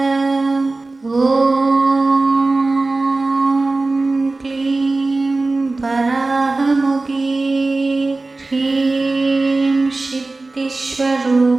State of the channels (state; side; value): quieter; left; 3.3 dB